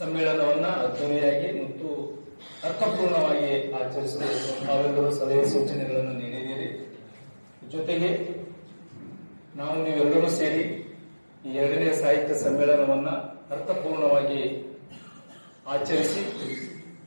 ಅದ್ದೂರಿಯಾಗಿ ಮತ್ತು ಅರ್ಥಪೂರ್ಣವಾಗಿ ಆಚರಿಸಲು ನಾವೆಲ್ಲರೂ ಸಲಹೆ ಸೂಚನೆಗಳನ್ನು ನೀಡಿದ್ದೀರಿ. ಜೊತೆಗೆ ನೀವೆಲ್ಲರೂ ಸೇರಿ ಈ 2ನೇ ಸಾಹಿತ್ಯ ಸಮ್ಮೇಳನವನ್ನ ಅರ್ಥಪೂರ್ಣವಾಗಿ ಆಚರಿಸಿ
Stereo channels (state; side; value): inverted; both; correlation -1.00